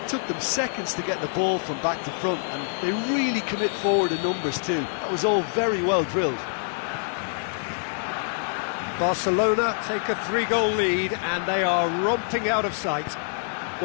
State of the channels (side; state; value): right; silent; digital silence